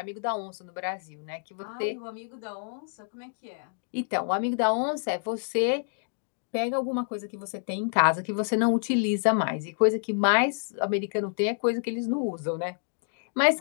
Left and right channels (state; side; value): silent; right; digital silence